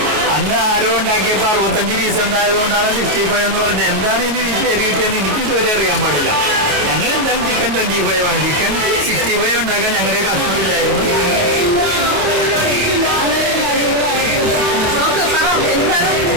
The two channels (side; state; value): left; late; 28 ms